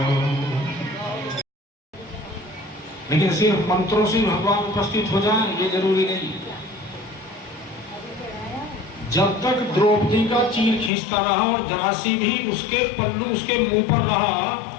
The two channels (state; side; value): drops out; right; at 10.9 s